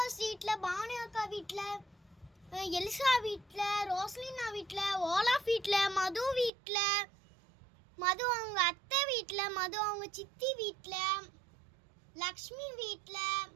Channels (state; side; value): drops out; left; at 6.5 s